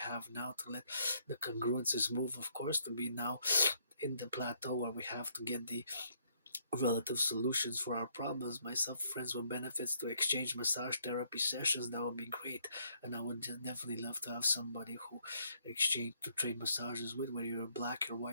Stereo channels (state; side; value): inverted; both; correlation -0.69